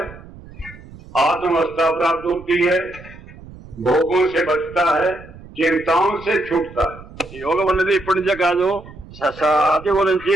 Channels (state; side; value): noise; right; rumble, 18 dB below the sound